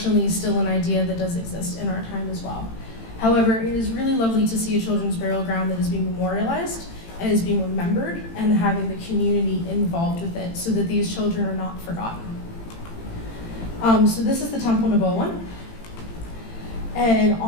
still an idea that does exist in our time as well. However, it is really lovely to see a children's burial ground that is being memorialized and is being remembered and having the community involved with it so that these children are not forgotten. So this is the Temple Nebo one. And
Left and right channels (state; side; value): late; right; 18 ms